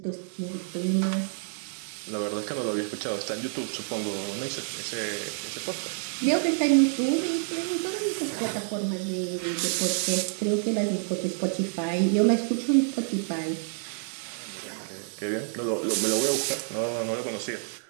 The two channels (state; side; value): silent; left; digital silence